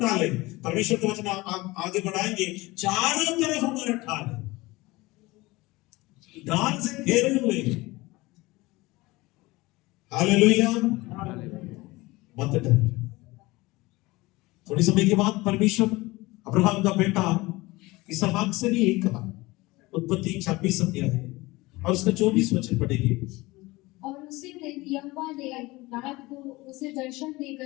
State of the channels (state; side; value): quieter; right; 21.3 dB